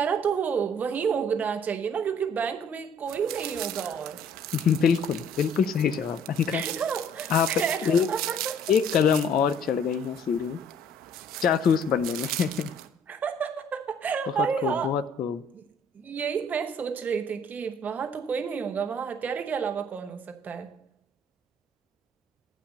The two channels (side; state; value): both; normal; correlation 0.58